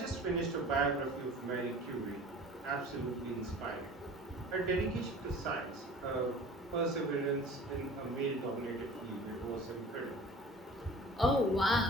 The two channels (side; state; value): both; normal; correlation 0.43